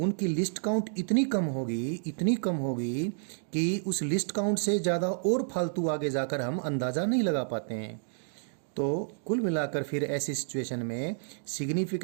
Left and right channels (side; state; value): left; silent; digital silence